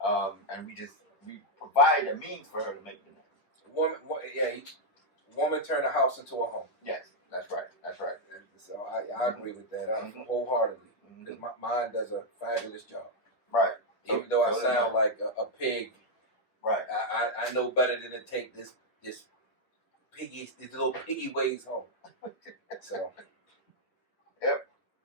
we provide a means for her to make the nest. Woman turn the house into a home. Yes, that's right. That's right. And so I agree with that wholeheartedly. Because mine does a fabulous job. Right. Even though I sound like a pig. Right. I know better than to take this little piggy ways home. So. Yep.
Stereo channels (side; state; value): right; late; 9.6 ms